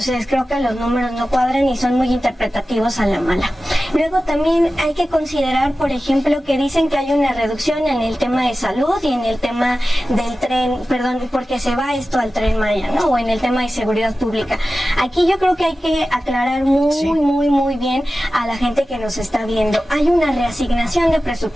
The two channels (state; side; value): normal; both; correlation 0.95